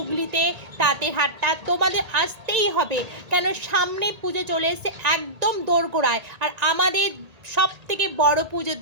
তাঁতের হাটটা। তোমাদের আসতেই হবে, কেন সামনে পুজো চলে এসেছে একদম দোরগোড়ায়। আর আমাদের সব থেকে বড় পুজো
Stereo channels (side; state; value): left; late; 1.8 ms